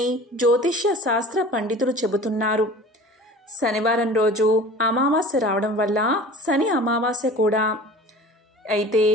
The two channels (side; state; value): both; normal; correlation 0.42